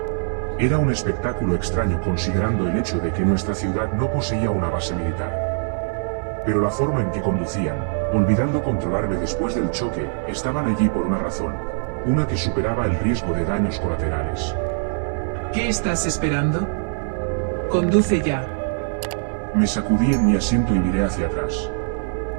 Era un espectáculo extraño considerando el hecho de que nuestra ciudad no poseía una base militar. Pero la forma en que conducían, olvidando controlarme después del choque, estaban allí por una razón, una que superaba el riesgo de daños colaterales. ¿Qué estás esperando? Conduce ya. Me sacudí en mi asiento y miré hacia atrás.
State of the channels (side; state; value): left; silent; 64 dB below the other